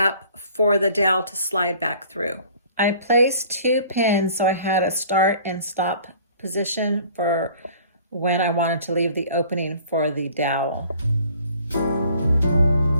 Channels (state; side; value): inverted; both; correlation -0.52